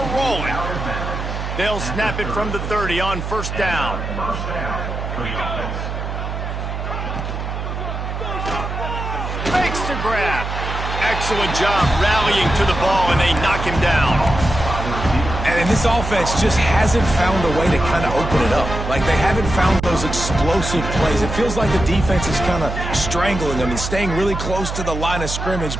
rolling. They'll snap it from the 30 on first down. Makes the grab. Excellent job rallying to the ball, and they knock him down. And this offense just hasn't found a way to kind of open it up. Like, they haven't found those explosive plays. It feels like the defense is kind of strangling them and staying really close to the line of scrimmage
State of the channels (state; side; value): noise; right; hum, 5 dB below the sound